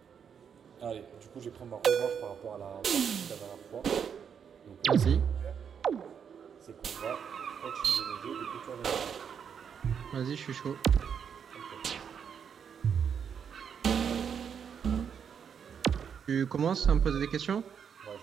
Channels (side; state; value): left; quieter; 7.4 dB